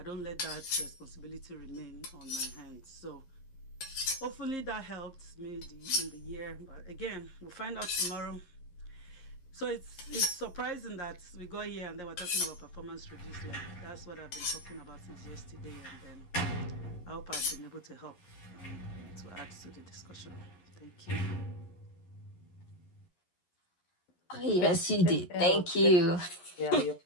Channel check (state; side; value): late; right; 11 ms